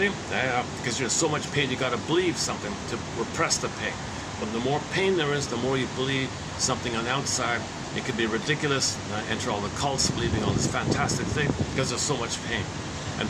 Yeah, because you're in so much pain, you got to believe something to repress the pain. But the more pain there is, the more you believe something on the outside. It could be ridiculous. Enter all the cults believing all this fantastic thing because there's so much pain. And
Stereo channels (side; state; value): both; identical; correlation 1.00